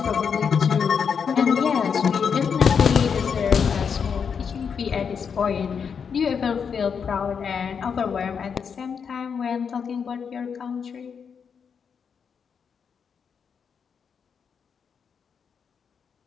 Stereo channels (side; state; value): right; quieter; 6.6 dB